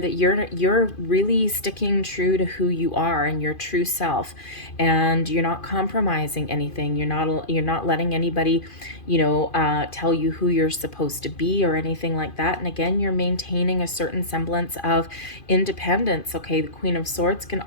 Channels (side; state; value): right; late; 2.5 ms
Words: you're really sticking true to who you are and your true self, and you're not compromising anything. You're not letting anybody, you know, tell you who you're supposed to be or anything like that. And again, you're maintaining a certain semblance of independence. Okay, the Queen of Swords can